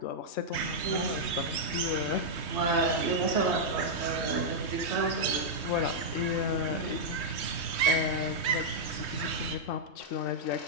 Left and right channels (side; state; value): right; late; 3.2 ms